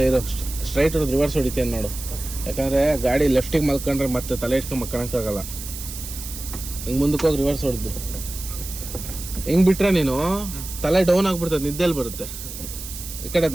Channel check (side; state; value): right; noise; hiss, 10 dB below the sound